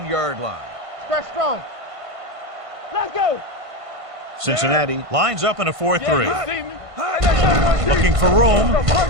line. Stretch strong. Let's go. Cincinnati lines up in a 4-3. Yeah, you see me. Hey, let's go, Looking for room.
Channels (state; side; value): late; left; 1.5 ms